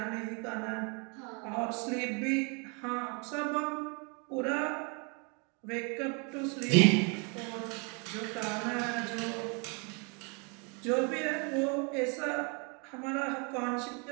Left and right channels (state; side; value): quieter; left; 34.5 dB